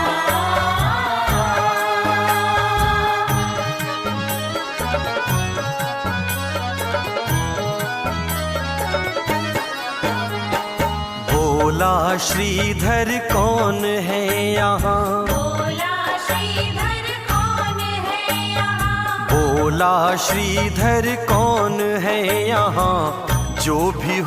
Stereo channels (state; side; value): identical; both; correlation 1.00